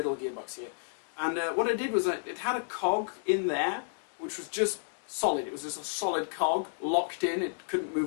gearbox here. And what I did was it had a cog in there which was just solid. It was just a solid cog locked in. It couldn't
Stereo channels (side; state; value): right; silent; digital silence